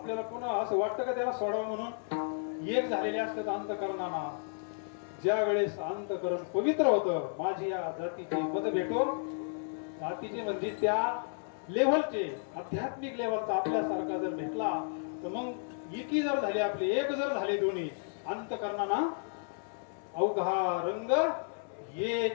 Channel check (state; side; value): silent; right; 56 dB below the other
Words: पुन्हा असं वाटतं का त्याला सोडावं म्हणून? एक झालेले असतात अंतकरणाला. ज्या वेळेस अंतकरण पवित्र होतं, माझी या जातीची पद भेटो. जातीचे म्हणजे त्या लेव्हलचे आध्यात्मिक लेव्हलचा आपल्यासारखा जर भेटला तर मग एकी जर झाले, आपले एक जर झाले दोन्ही अंतकरणाना अवघा रंग